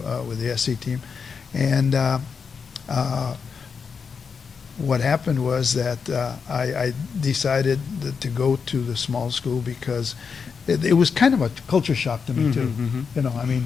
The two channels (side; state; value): right; quieter; 5.8 dB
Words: with the SC team, and what happened was that I decided to go to the small school because it was kind of a culture shock to me too. Mhm,